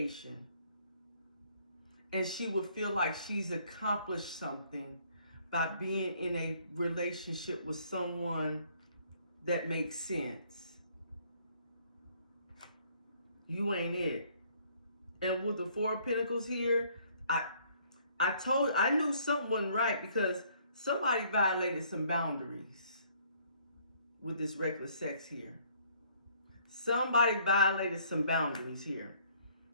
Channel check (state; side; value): inverted; both; correlation -0.62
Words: And she would feel like she's accomplished something by being in a relationship with someone that makes sense. You ain't it. And with the 4 of Pentacles here, I knew something wasn't right because somebody violated some boundaries with this reckless sex here. Somebody violated some boundaries here.